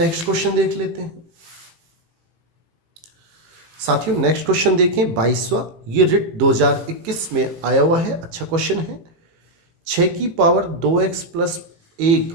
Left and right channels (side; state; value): left; late; 18 ms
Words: क्वेश्चन देख लेते हैं साथियों। नेक्स्ट क्वेश्चन देखें 22वां, ये रिट 2021 में आया हुआ है। अच्छा क्वेश्चन है। 6 की पावर 2x प्लस